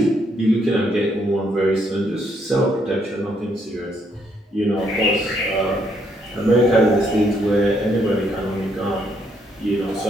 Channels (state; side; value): normal; both; correlation 0.72